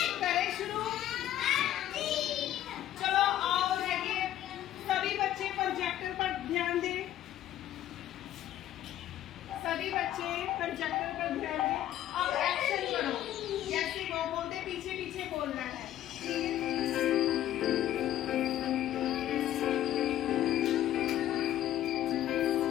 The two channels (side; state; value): right; quieter; 12.5 dB